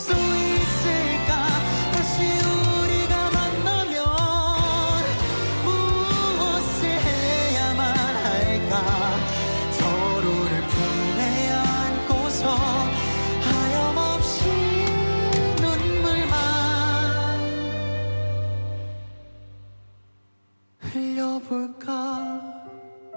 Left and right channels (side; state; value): both; inverted; correlation -1.00